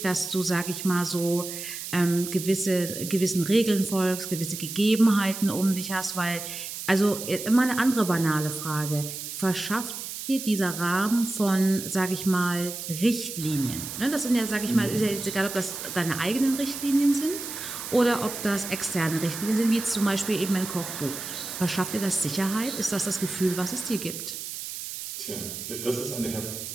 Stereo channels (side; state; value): right; noise; hiss, 8 dB below the sound